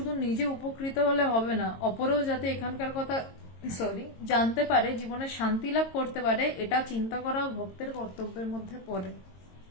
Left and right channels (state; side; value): late; right; 22 ms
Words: নিজে উপকৃত হলে হবে না, অপরেও যাতে এখানকার কথা জানতে পারে, জীবনে শান্তি লাভ করতে পারে, এটা চিন্তা করা ভক্তের কর্তব্যের মধ্যে পড়ে।